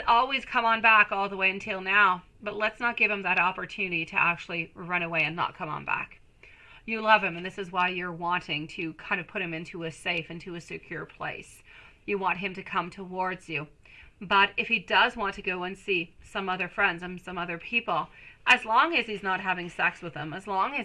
always come on back all the way until now, but let's not give him that opportunity to actually run away and not come on back. You love him, and this is why you're wanting to kind of put him into a safe, into a secure place. You want him to come towards you. But if he does want to go and see some other friends and some other people, as long as he's not having sex with them, as long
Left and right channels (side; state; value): both; identical; correlation 1.00